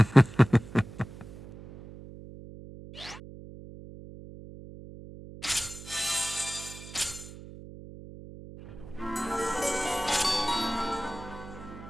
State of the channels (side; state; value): right; noise; hum, 15 dB below the sound